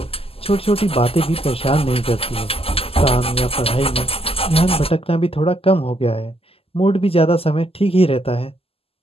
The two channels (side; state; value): right; late; 0.28 ms